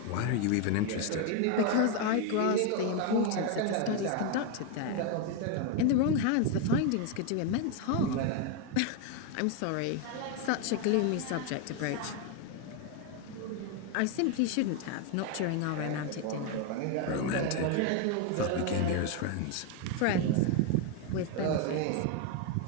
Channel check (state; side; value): different; both; correlation 0.01